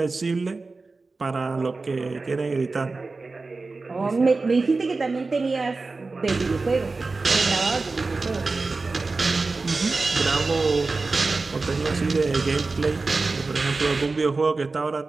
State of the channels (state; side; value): quieter; left; 3.8 dB